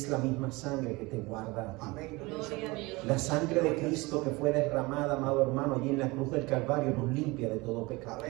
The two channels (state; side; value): quieter; left; 23.4 dB